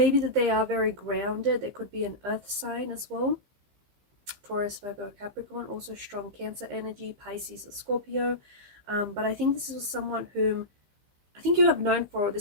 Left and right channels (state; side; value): late; left; 15 ms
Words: that they are very grounded. They could be an earth sign as well. Taurus, Virgo, Capricorn, also strong Cancer energy, Pisces or Scorpio. But I think this is someone whom I think you have known for